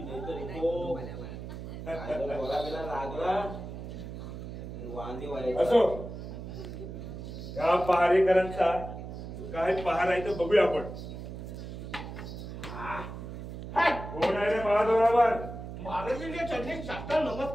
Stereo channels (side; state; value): right; noise; hum, 9 dB below the sound